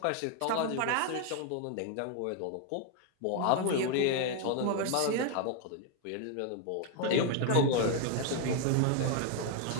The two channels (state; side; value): different; both; correlation 0.01